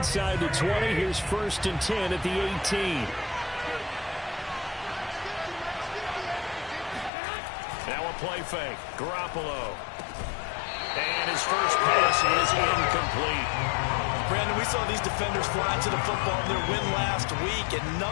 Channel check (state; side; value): drops out; right; at 7.1 s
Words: the 20, here's 1st and 10 at the 18. Now a play fake. Garoppolo. And his first pass is incomplete. Brandon, we saw these defenders fly to the football in their win last week, and